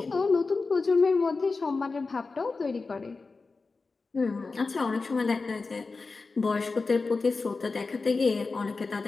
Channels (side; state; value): right; quieter; 4.1 dB